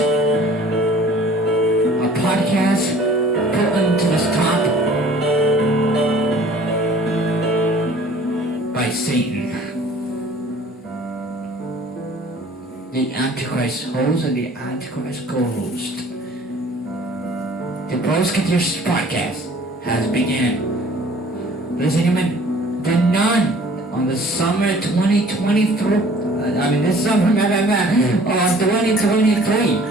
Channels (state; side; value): normal; both; correlation 0.51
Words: A podcast put into the top by Satan. The Antichrist host and the Antichrist co-host. The Brosketeers podcast has begun. Ladies and gentlemen, the nun on the summer 2023. This summer, 2023.